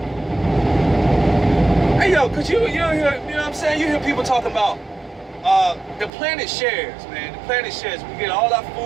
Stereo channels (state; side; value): drops out; left; at 6.1 s